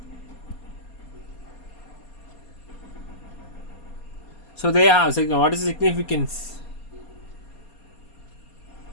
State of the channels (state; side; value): late; right; 4.3 ms